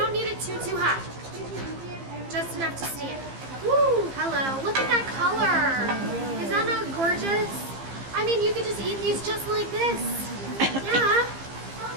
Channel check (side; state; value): left; late; 15 ms